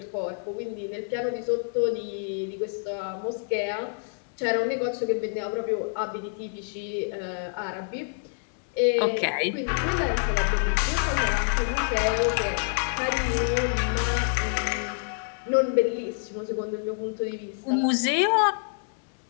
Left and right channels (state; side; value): silent; right; 60 dB below the other